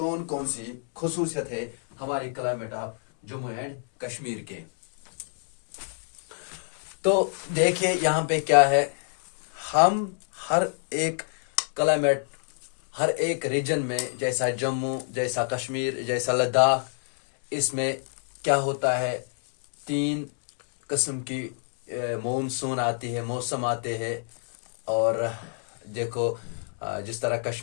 कौन सी खसूसियत है हमारे climate of Jammu and Kashmir के। तो देखिए यहाँ पे क्या है, हम हर एक क्लाइमेट हर एक रीजन में, जैसा जम्मू, जैसा कश्मीर, जैसा लद्दाख, इसमें क्या होता है, 3 किस्म की मॉनसून आती है, मौसम आते हैं। और देखो जिस तरह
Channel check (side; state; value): right; silent; digital silence